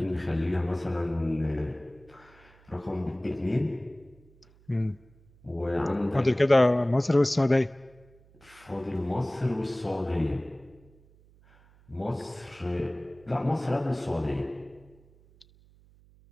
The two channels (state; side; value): noise; right; hum, 28 dB below the sound